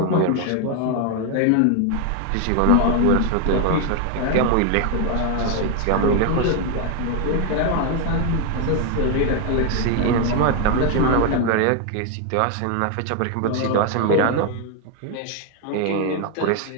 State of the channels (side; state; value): both; different; correlation 0.01